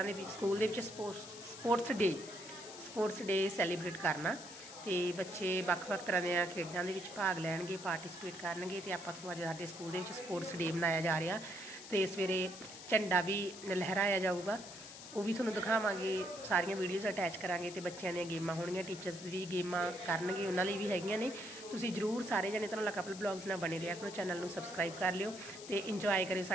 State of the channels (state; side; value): noise; left; hiss, 13 dB below the sound